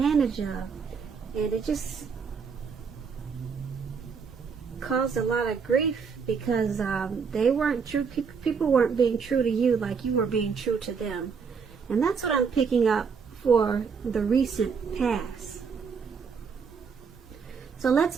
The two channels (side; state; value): left; quieter; 5.8 dB